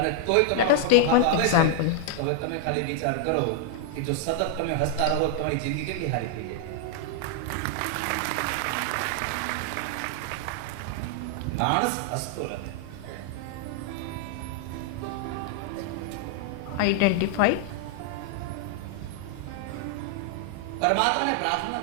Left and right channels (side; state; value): both; different; correlation 0.00